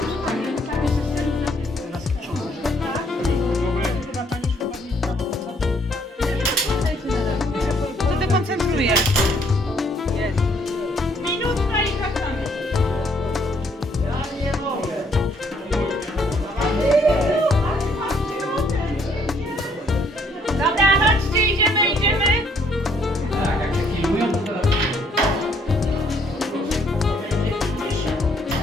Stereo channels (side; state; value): both; normal; correlation 0.66